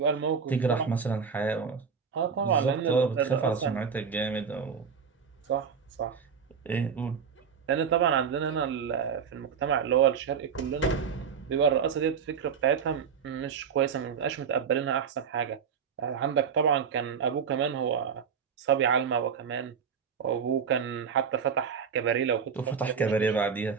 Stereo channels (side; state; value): left; quieter; 6.6 dB